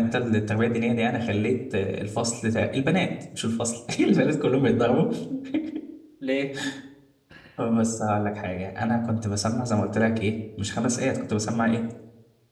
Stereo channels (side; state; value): both; identical; correlation 1.00